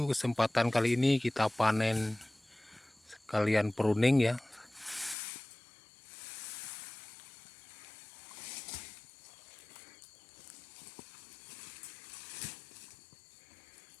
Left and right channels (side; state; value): right; drops out; at 5.2 s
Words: Kesempatan kali ini kita panen sekalian pruning ya.